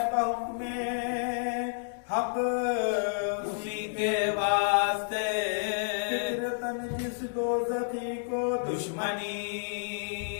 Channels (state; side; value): silent; right; digital silence